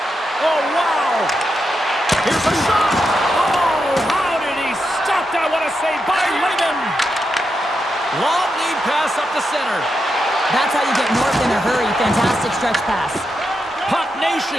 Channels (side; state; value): both; normal; correlation 0.86